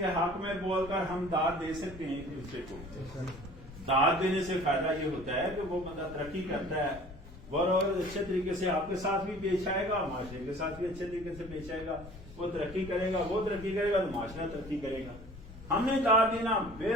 حق میں بول کر ہم داد دے سکتے ہیں ایک دوسرے کو۔ داد دینے سے فائدہ یہ ہوتا ہے کہ وہ بندہ ترقی کرتا ہے، اور اچھے طریقے سے آپ کے ساتھ بھی پیش آئے گا، معاشرے کے ساتھ بھی اچھے طریقے سے پیش آئے گا، وہ ترقی کرے گا، وہ ترقی کرے گا تو معاشرہ ترقی کرے گا۔ ہم نے داد دینا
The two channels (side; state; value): left; noise; rumble, 16 dB below the sound